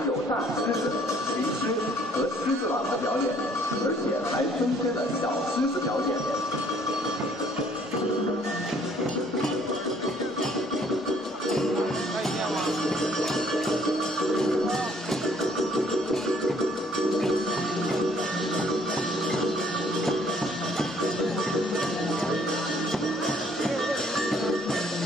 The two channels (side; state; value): both; normal; correlation 0.62